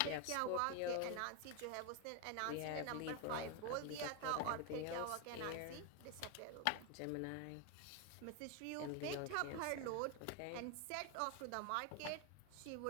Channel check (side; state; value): both; different; correlation 0.01